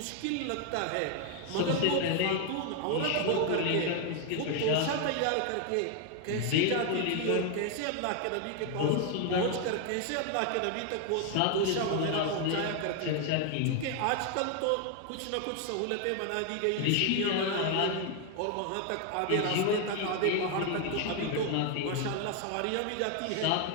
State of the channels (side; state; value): both; different; correlation 0.01